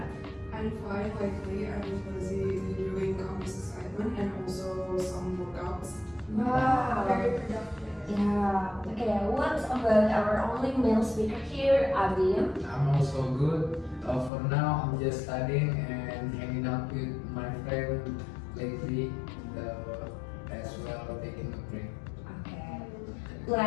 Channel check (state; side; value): drops out; right; at 14.3 s